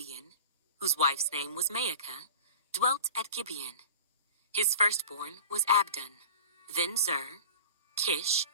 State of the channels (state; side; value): inverted; both; correlation -0.39